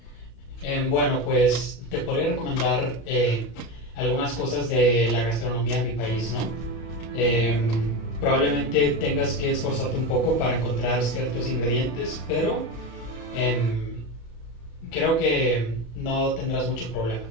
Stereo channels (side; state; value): right; late; 35 ms